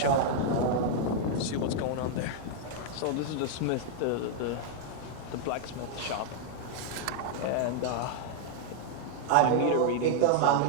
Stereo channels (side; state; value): both; different; correlation 0.00